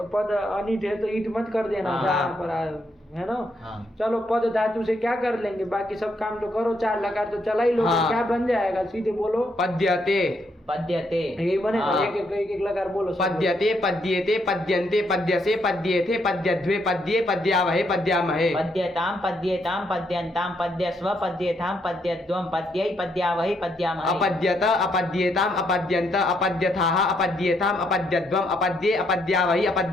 पद अनिट है तो ईट मत कर देना हाँ। जहाँ पर है ना। हाँ। चलो, पद धातु से क्या कर लेंगे, बाकी सब काम तो करो, 4 लकार तो चला ही लो। हाँ। क्या बन जाएगा, सीधे बोलो। पद्यते पद्यते। यही बनेगा, हाँ। एक लकार बोलो। सब पद्यते पद्येते पद्यन्ते पद्यसे पद्येथे पद्यध्वे पद्ये पद्यावहे पद्यामहे। पद्यताम पद्येताम पद्यन्ताम पद्यस्व पद्येथाम पद्यद्वम पद्यै पद्यावहि पद्यामहे। अपद्यत अपद्येताम अपद्यन्त अपद्यथाः अपद्येताम अपद्यद्वम अपद्ये अपद्यावहि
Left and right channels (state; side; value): normal; both; correlation 0.75